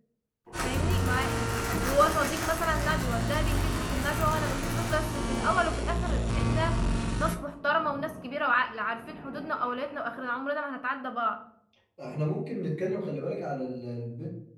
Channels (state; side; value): identical; both; correlation 1.00